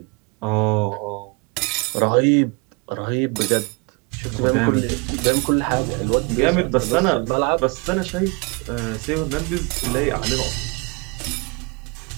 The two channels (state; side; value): quieter; left; 29.5 dB